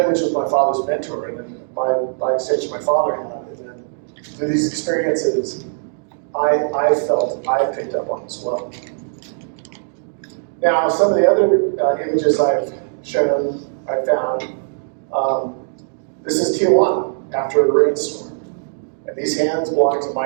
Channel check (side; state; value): left; silent; digital silence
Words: Lynch was my father's mentor, and then by extension my father had, and then through these experiences, I felt I picked up on as well. Now, some of the other images I've shown, I found, this is Tijuana after a rainstorm. And these hands belong to